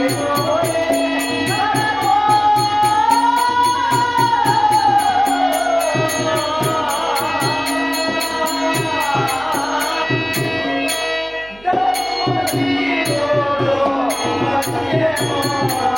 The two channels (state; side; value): noise; right; hum, 24 dB below the sound